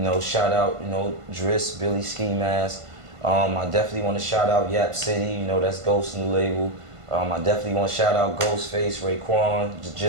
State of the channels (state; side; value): late; left; 1.5 ms